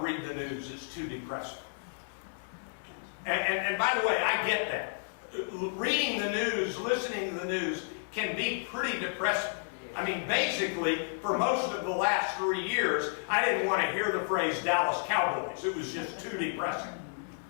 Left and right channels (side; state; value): right; silent; 57 dB below the other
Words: read the news, it's too depressing. And by the way, I get that. Reading the news, listening to the news can be pretty depressing. I mean, basically, for most of the last 3 years, I didn't want to hear the phrase Dallas Cowboys. It was just too depressing.